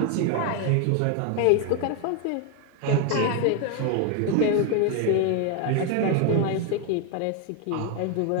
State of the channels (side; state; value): both; different; correlation 0.01